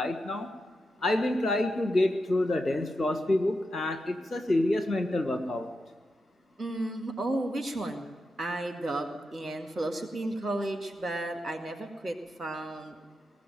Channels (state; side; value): normal; both; correlation 0.88